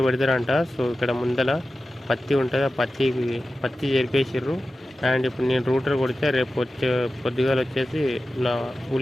పెడతారంట. సో ఇక్కడ ముందల పత్తి ఉంటుంది, ఆ పత్తి చేరిపేసిర్రు. అండ్ ఇప్పుడు నేను రూటర్ కొడితే రేపు పొద్దుగాలు వచ్చేసి నా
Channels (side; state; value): both; normal; correlation 0.94